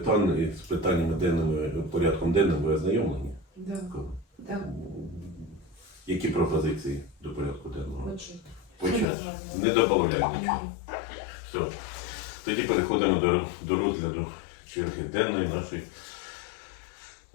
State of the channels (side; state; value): right; drops out; at 9.1 s